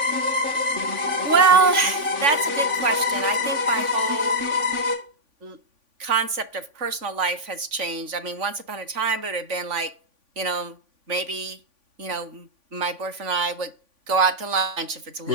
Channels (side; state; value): left; late; 3.5 ms